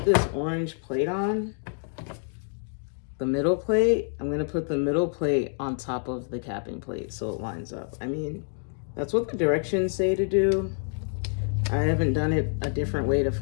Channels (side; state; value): right; silent; 60 dB below the other